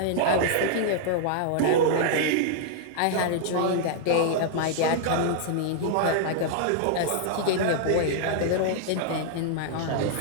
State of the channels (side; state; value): both; different; correlation -0.01